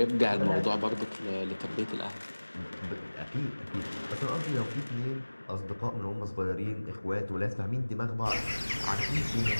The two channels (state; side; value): inverted; both; correlation -1.00